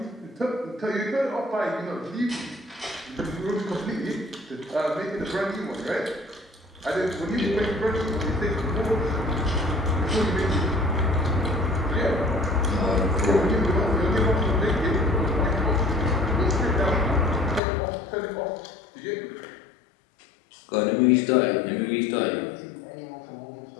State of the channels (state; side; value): drops out; right; at 17.6 s